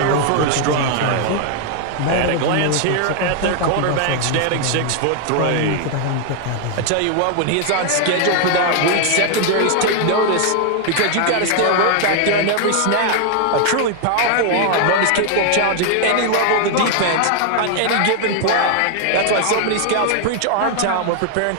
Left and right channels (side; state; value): both; different; correlation 0.00